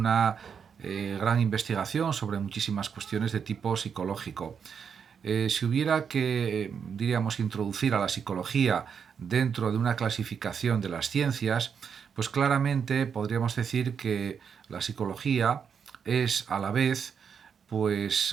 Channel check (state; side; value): quieter; left; 6.9 dB